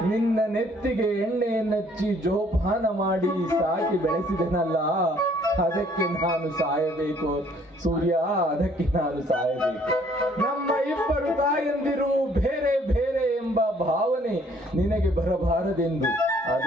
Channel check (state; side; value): normal; both; correlation 0.61